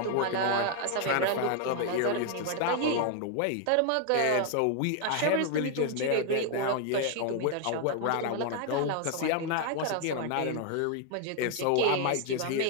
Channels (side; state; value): both; different; correlation 0.00